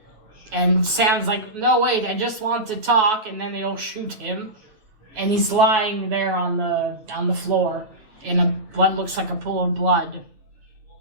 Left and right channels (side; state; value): left; late; 9.3 ms